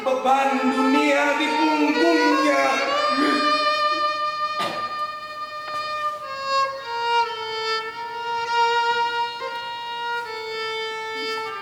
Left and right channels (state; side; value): identical; both; correlation 1.00